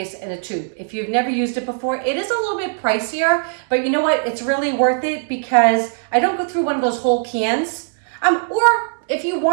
in a tube. If you've never used it before, it is a little bit pricier, but you know what? It's really worth it because I don't go through one of those whole cans. Or if you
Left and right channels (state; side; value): silent; left; 66 dB below the other